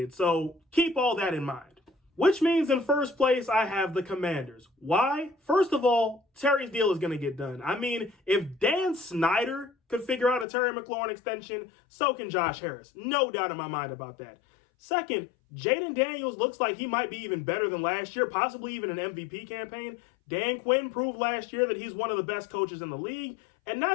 So keep all that in mind. Which means in first place, I have the Commanders. Why? First of all, Terry's deal is going to get done. I mean, if Dan Snyder could figure out a Terry McLaurin extension, so can Josh Harris. No doubt in my mind about that. Second, Jaden Daniels looks like he might be even better than last year, possibly even an MVP campaign. Dan Quinn proved last year that he's one of the best coaches in the league. And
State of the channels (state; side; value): drops out; right; at 10.5 s